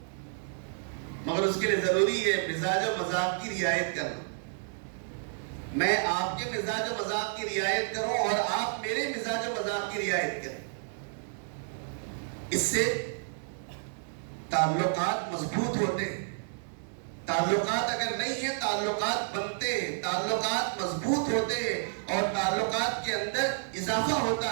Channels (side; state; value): left; silent; digital silence